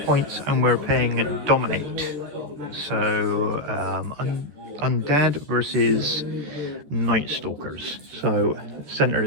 points, and we're paying Dominate. So, Undead versus Nightstalkers. So, center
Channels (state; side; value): late; left; 13 ms